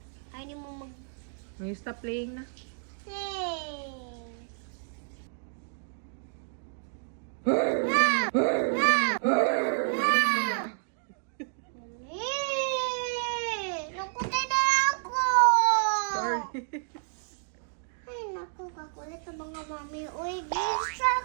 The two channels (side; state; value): left; silent; digital silence